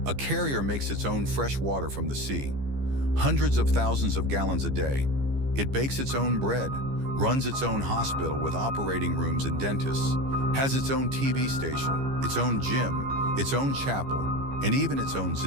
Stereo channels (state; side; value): late; left; 15 ms